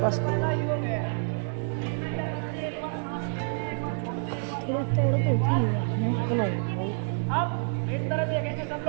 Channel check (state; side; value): silent; left; digital silence